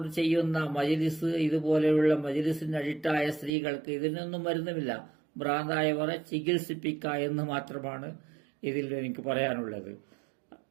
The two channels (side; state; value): left; drops out; at 3.5 s